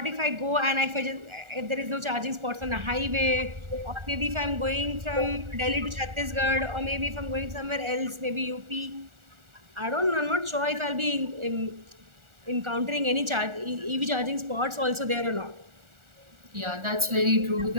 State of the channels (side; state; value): left; late; 1.4 ms